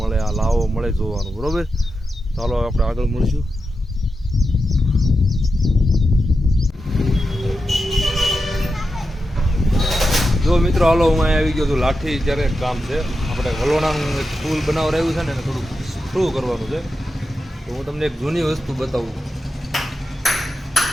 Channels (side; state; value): both; normal; correlation 0.89